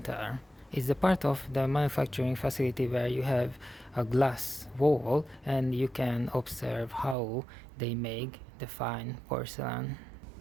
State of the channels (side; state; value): left; drops out; at 7.2 s